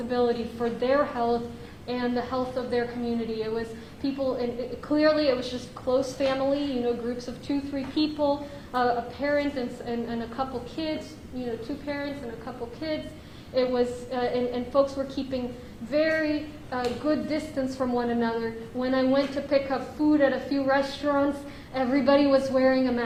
for their health and the health of their community. It was people, and clearly it was just close family, groups of 2-3 people, a parent and a couple kids, 2 parents and a couple kids. It was, and folks were keeping very good distance from one another. When I went to pick up food at a few restaurants, everybody was wearing a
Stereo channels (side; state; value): both; identical; correlation 1.00